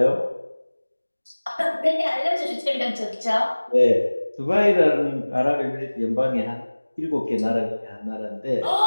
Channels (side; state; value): both; inverted; correlation -1.00